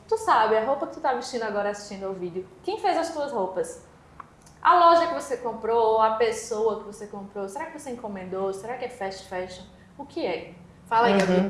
Tu sabe, a roupa que tu tá vestindo agora assistindo ao vídeo. Quem fez as tuas roupas? A loja que você comprou, a pessoa que você comprou, será que você encomendou? Será que é fast fashion? O que é? Fala aí, Gabi, um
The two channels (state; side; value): identical; both; correlation 1.00